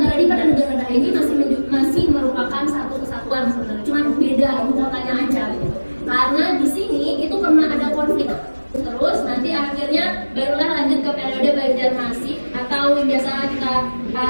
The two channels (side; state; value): both; inverted; correlation -1.00